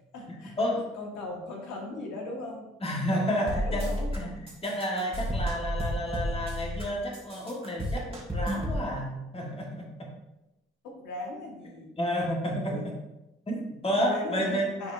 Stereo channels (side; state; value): both; normal; correlation 0.56